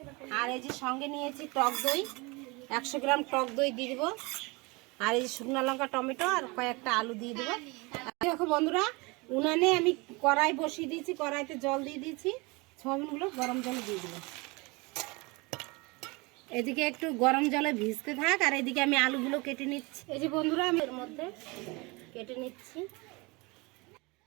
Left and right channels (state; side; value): quieter; left; 26.3 dB